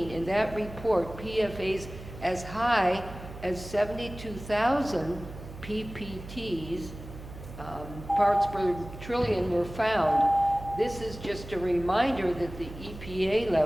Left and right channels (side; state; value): right; noise; hum, 13 dB below the sound